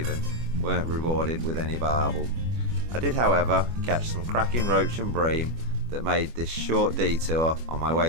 weren't rewarded with any barbel. I did, however, catch some cracking roach and bream that made this short detour on my way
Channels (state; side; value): late; left; 25 ms